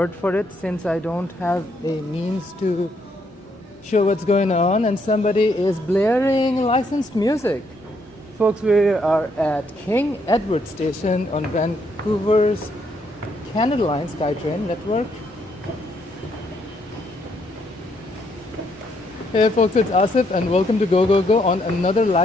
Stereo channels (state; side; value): normal; both; correlation 0.73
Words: for it since I don't have a means to show what's going on and somebody is blaring licensed music. Folks, we are at King Edward Station on Vancouver's Canada Line SkyTrain network. Hey folks, it's Asif and welcome to Go Go Go on another